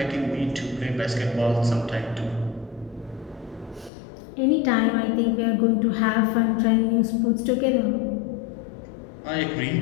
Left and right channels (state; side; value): drops out; right; at 3.9 s